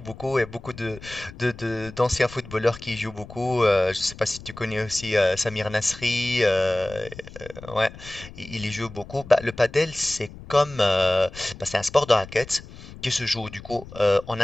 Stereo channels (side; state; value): left; noise; rumble, 16 dB below the sound